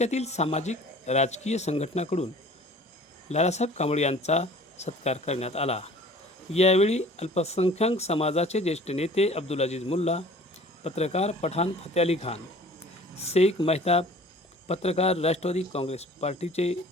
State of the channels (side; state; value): both; normal; correlation 0.48